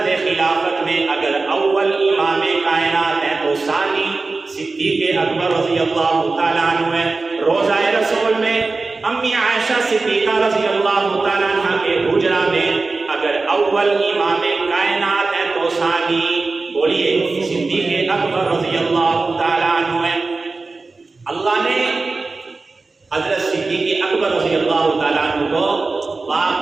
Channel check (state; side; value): quieter; left; 3.8 dB